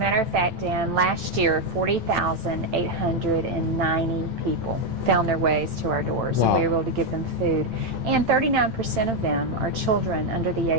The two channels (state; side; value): late; left; 8.9 ms